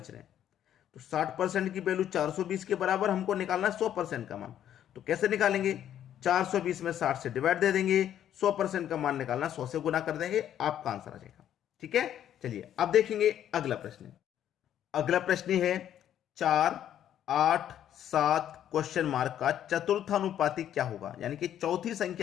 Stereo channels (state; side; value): quieter; right; 10.6 dB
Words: रहे हैं। तो 60% की वैल्यू 420 के बराबर हमको निकालना है 100% का मान। तो कैसे निकालेंगे, 420 में 60 से डिवाइड दे देंगे, 100% का मान निकालना 100 से गुना कर देंगे, आपका आंसर आ जाएगा, ठीक है। चलिए अब देखेंगे अगला प्रश्न। अगला प्रश्न है 4, 8, 7 क्वेश्चन मार्क का चतुर्थानुपाती क्या होगा, यानी कि चौथी